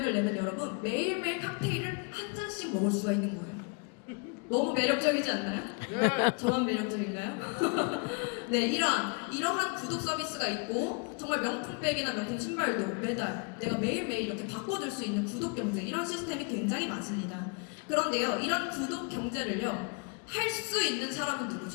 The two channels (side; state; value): right; quieter; 35.0 dB